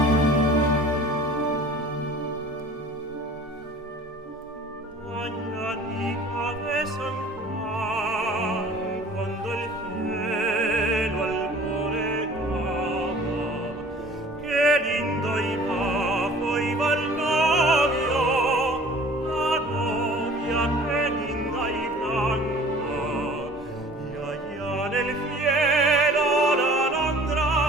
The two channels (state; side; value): normal; both; correlation 0.48